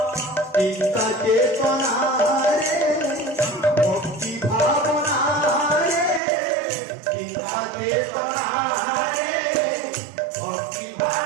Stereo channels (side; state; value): left; drops out; at 6.2 s